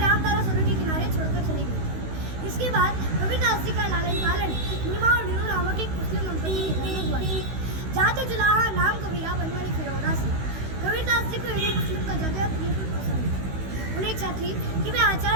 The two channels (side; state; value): left; late; 16 ms